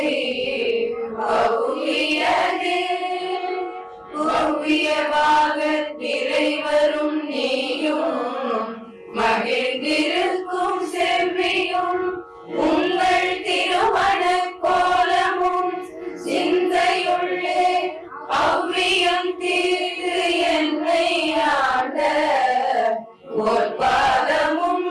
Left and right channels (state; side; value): identical; both; correlation 1.00